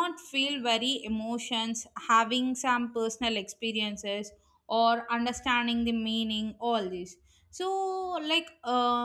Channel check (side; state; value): both; identical; correlation 1.00